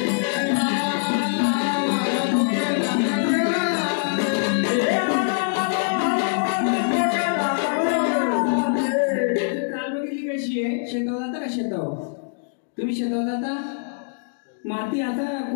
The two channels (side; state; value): right; silent; digital silence